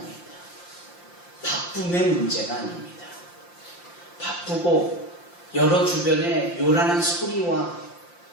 바쁨의 문제가 아닙니다. 바쁘고 여러 주변에 요란한 소리와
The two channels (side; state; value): right; late; 5.8 ms